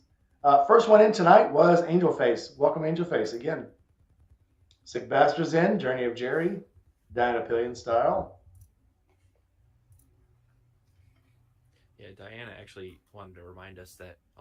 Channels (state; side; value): identical; both; correlation 1.00